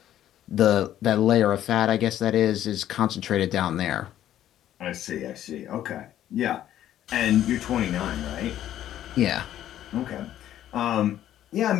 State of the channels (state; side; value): quieter; right; 11.9 dB